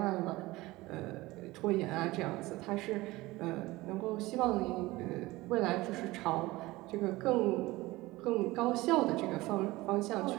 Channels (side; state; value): left; quieter; 19.7 dB